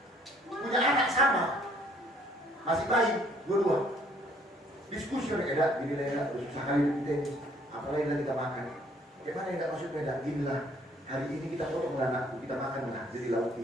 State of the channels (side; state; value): both; normal; correlation 0.61